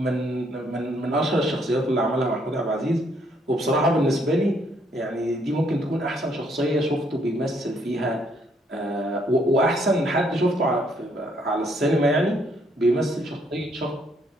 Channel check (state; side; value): normal; both; correlation 0.69